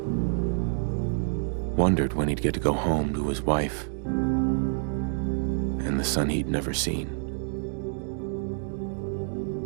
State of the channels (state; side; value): silent; left; digital silence